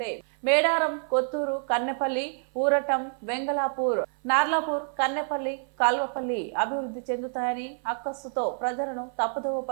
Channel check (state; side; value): silent; left; 57 dB below the other